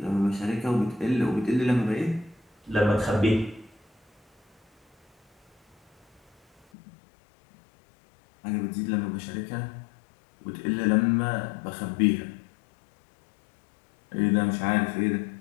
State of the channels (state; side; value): drops out; right; at 6.7 s